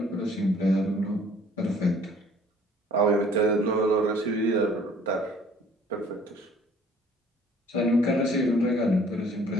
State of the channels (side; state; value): both; normal; correlation 0.56